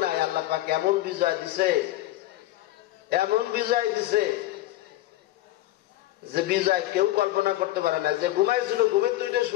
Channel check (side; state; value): right; quieter; 15.8 dB